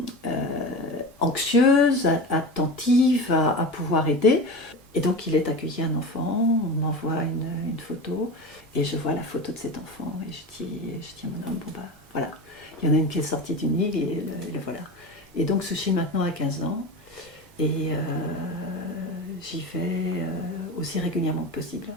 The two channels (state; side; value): normal; both; correlation 0.28